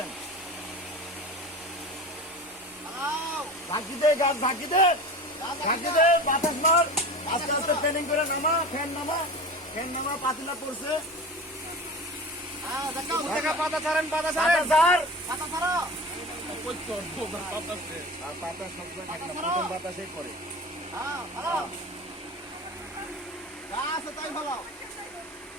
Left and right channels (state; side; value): normal; both; correlation 0.33